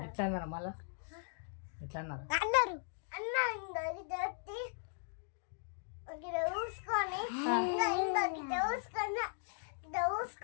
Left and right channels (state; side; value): silent; right; digital silence